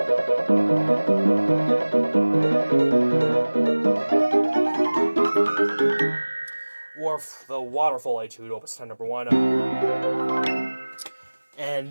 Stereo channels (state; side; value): inverted; both; correlation -1.00